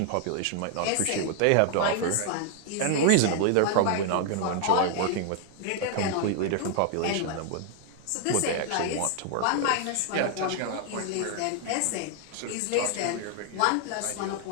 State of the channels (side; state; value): both; different; correlation 0.00